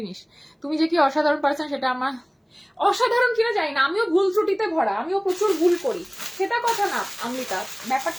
নিস। তুমি যে কি অসাধারণ পারছেন সেটা আমার, অসাধারণ কিনা জানি না, আমিও ভুল ত্রুটিতে ভরা, আমিও প্রচুর ভুল করি, সেটা কথা না অমৃতা।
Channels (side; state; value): both; identical; correlation 1.00